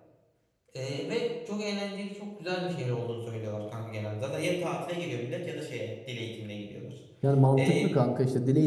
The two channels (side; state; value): both; identical; correlation 1.00